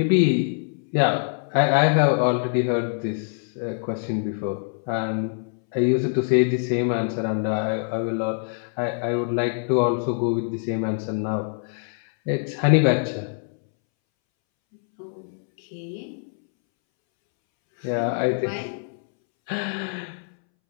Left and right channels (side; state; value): right; silent; 62 dB below the other